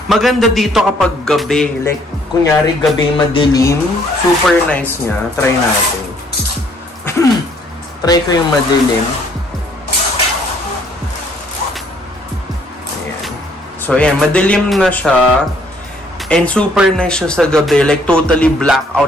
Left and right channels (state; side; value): normal; both; correlation 0.64